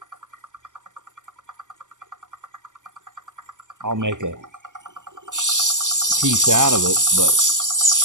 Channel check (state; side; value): late; left; 0.87 ms